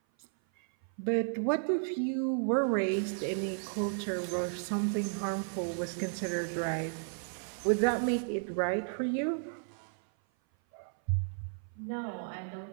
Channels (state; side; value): silent; left; 56 dB below the other